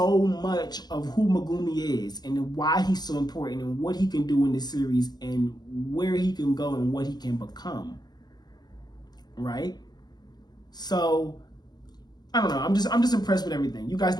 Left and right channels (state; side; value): late; right; 0.20 ms